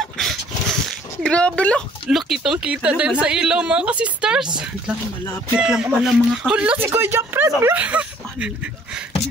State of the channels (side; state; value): both; normal; correlation 0.58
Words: Grabe lang. Look, kitang-kita din sa ilaw mga ka-sisters. Malapit lang pala mga ka-sisters. Hala, si Kuya Jeffred.